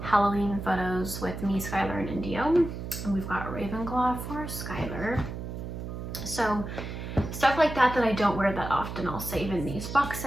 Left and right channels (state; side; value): noise; right; hum, 7 dB below the sound